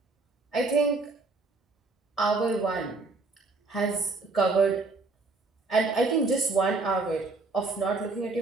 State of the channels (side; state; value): left; quieter; 3.7 dB